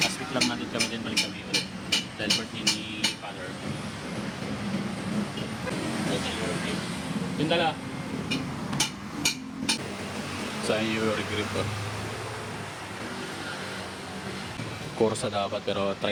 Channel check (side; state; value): both; identical; correlation 1.00